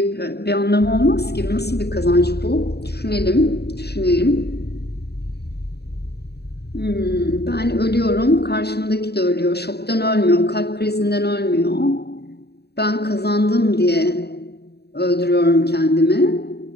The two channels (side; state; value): right; late; 0.48 ms